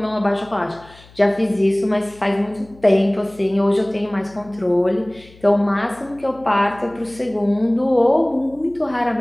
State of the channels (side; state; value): left; noise; hum, 24 dB below the sound